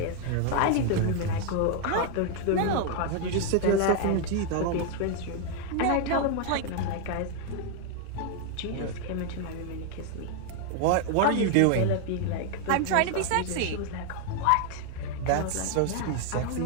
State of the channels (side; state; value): both; different; correlation 0.00